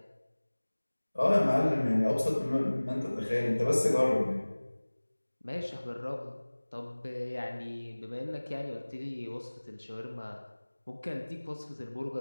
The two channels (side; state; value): both; inverted; correlation -1.00